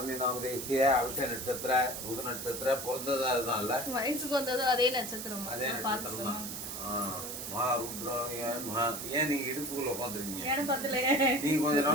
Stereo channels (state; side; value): noise; right; hiss, 7 dB below the sound